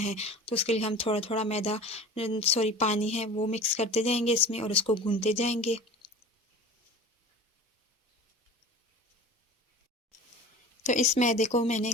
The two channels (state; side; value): normal; both; correlation 0.37